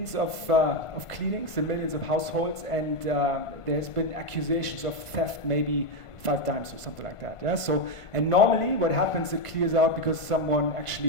of cleanings in millions of households, and there's been accusations of theft maybe 5 times or something like that. Yeah. So, and normally what happens, it clears out because someone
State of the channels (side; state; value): right; late; 1.5 ms